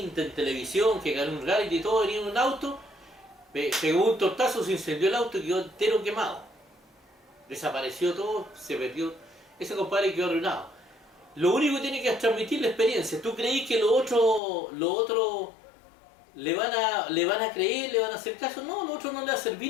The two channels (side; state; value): right; drops out; at 14.4 s